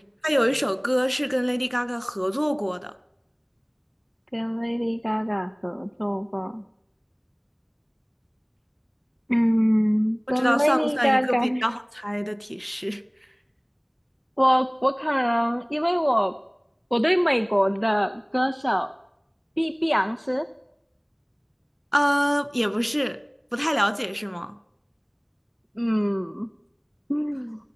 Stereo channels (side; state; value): both; identical; correlation 1.00